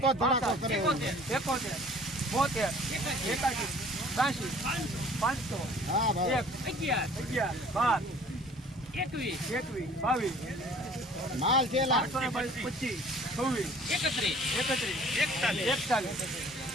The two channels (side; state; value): both; normal; correlation 0.51